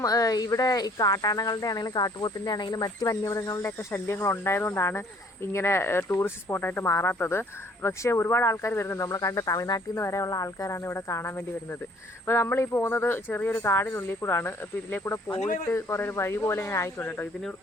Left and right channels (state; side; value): normal; both; correlation 0.59